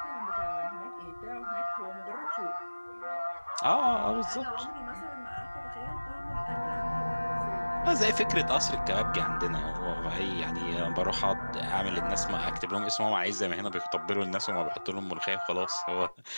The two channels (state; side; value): inverted; both; correlation -1.00